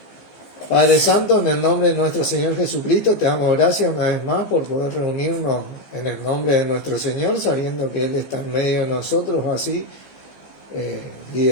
Padre Santo, en el nombre de nuestro Señor Jesucristo, te damos gracias una vez más por poder reunirnos en el nombre de nuestro Señor, sabiendo que Él está en medio de nosotros, así,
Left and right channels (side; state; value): right; late; 15 ms